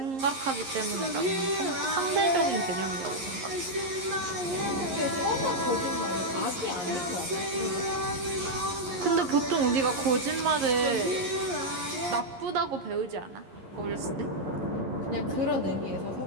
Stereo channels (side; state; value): left; late; 11 ms